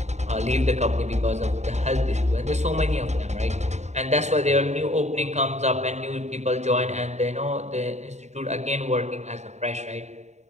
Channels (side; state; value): left; late; 0.33 ms